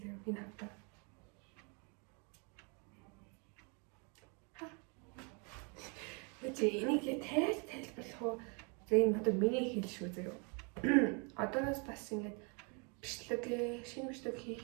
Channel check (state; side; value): quieter; left; 35.1 dB